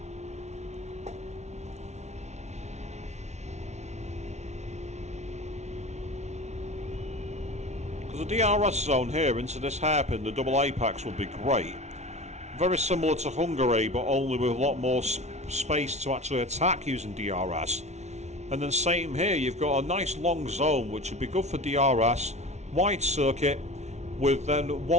Because the DRS zone here into this hairpin, the double apex, would be great. Very similar to Hungary, but only with a lot more space to actually attack using DRS. And then same here, you've got a nice long zone which would be good for DRS, wide circuit, with then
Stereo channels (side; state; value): left; late; 0.32 ms